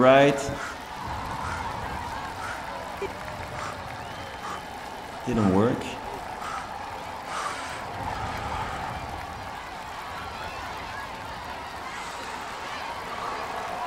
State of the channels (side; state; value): both; identical; correlation 1.00